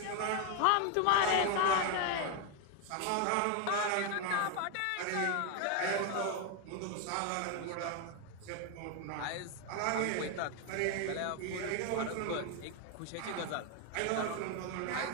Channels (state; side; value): different; both; correlation 0.00